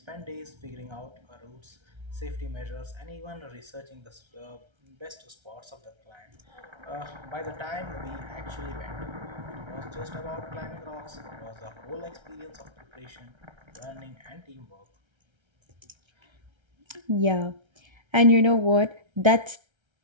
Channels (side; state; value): left; late; 1.3 ms